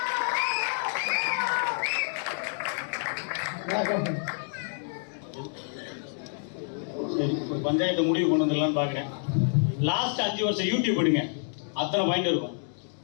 சரி, ஒரு பஞ்சாயத்தை முடிவு கொண்டு வந்துடலான்னு பார்க்குறேன். லாஸ்ட் 5 வருஷம் யூடியூப் எடுங்க, அத்தனை பாயிண்ட் இருக்கும்.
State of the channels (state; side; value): silent; right; digital silence